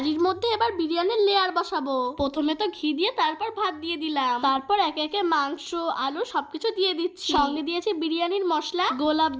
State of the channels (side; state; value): both; identical; correlation 1.00